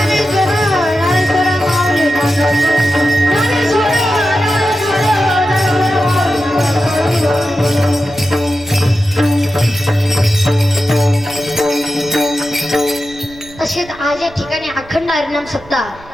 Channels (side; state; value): right; noise; rumble, 21 dB below the sound